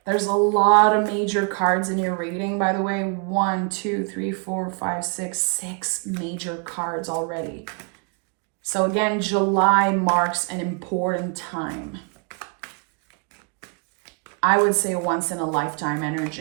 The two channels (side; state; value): left; quieter; 35.0 dB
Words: There's a lot of major cards in your reading, by the way. 1, 2, 3, 4, 5, 6 major cards already. So again, July marks an important time. I would say a once in a lifetime